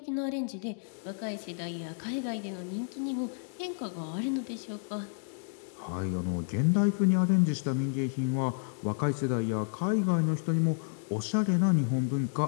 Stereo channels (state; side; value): silent; right; digital silence